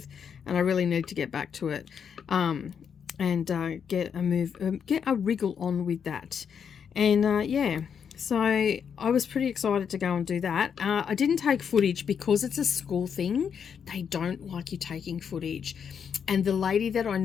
and I really need to get back to it, and get a wriggle on with that. And yeah, so I was pretty excited to go and do that. I didn't take footage because it's a school thing. They don't like you taking footage, and the lady that I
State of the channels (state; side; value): quieter; right; 7.3 dB